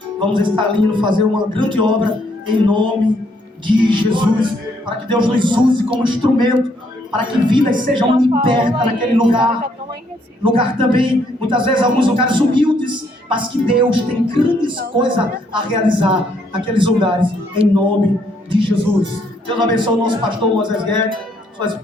Vamos estar ali indo fazer uma grande obra em nome de Jesus, para que Deus nos use como instrumento, para que vidas sejam libertas naquele lugar também, muitas vezes alguns lugares humildes, mas que Deus tem grandes coisas a realizar naqueles lugares, em nome de Jesus. Deus abençoe o nosso pastor Moisés Guedes, sua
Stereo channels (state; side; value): normal; both; correlation 0.70